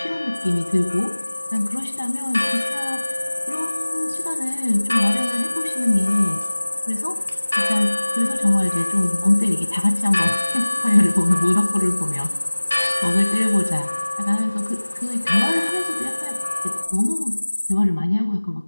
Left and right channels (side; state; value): both; inverted; correlation -1.00